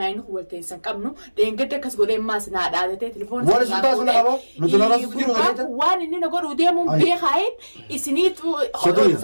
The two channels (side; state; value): both; inverted; correlation -1.00